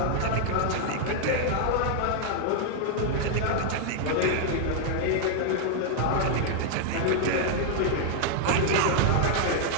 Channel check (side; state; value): both; different; correlation 0.00